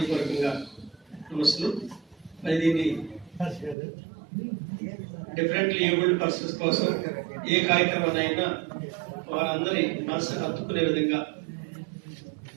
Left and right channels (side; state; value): left; drops out; at 3.8 s